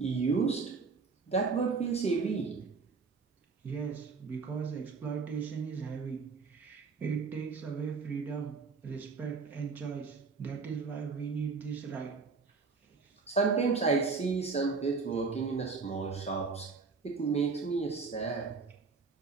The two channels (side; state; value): left; quieter; 4.8 dB